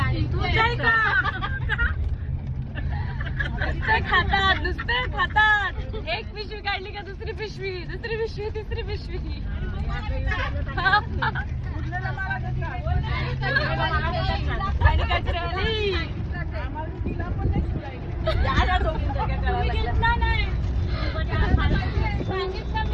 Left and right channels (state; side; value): identical; both; correlation 1.00